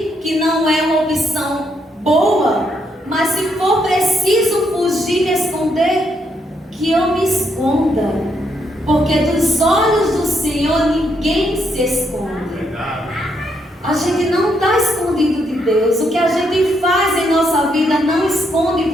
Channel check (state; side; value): normal; both; correlation 0.76